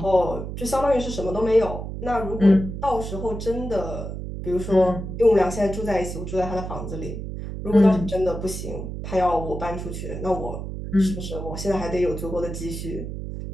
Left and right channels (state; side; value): noise; right; hum, 7 dB below the sound